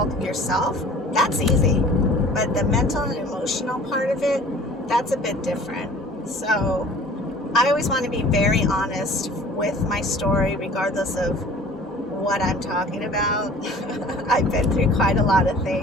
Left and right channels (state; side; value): normal; both; correlation 0.48